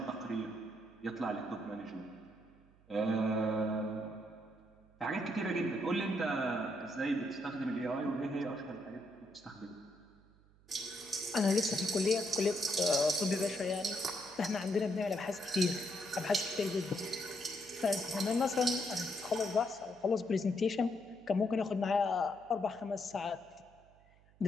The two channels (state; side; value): noise; right; hum, 28 dB below the sound